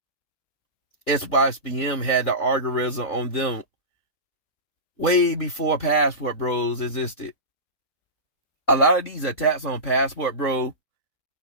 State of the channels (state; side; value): late; right; 3.8 ms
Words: SYSBM had the algorithm on them way before Passport Bros existed. A lot of these attacks on Passport Bro,